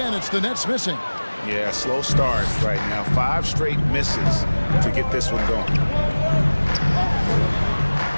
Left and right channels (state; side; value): inverted; both; correlation -1.00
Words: it's the Nets missing. Yeah, slow start right now. 5 straight misses to get this one going.